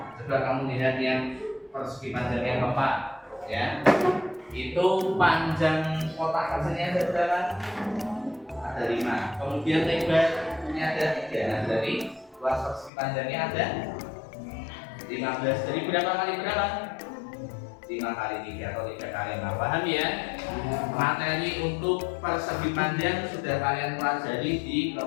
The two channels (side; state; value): right; drops out; at 12.9 s